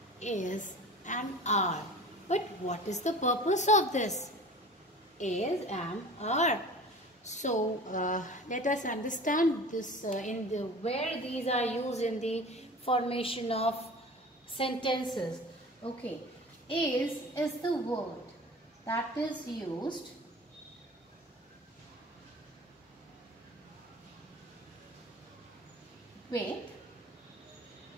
is and are. But what is the purpose of this? Is, am, are. So let us understand this where these are used in the formation of sentences. Okay, is the word that is used with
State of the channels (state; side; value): normal; both; correlation 0.39